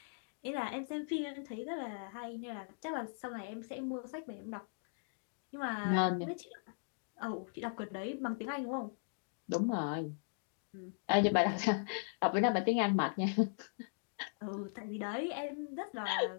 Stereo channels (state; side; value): silent; right; digital silence